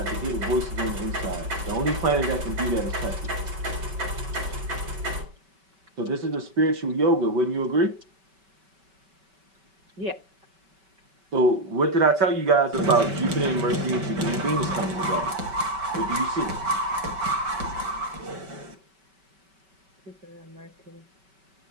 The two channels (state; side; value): late; left; 5.2 ms